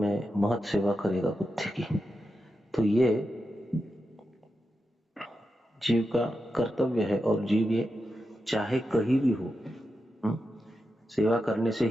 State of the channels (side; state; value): both; normal; correlation 0.89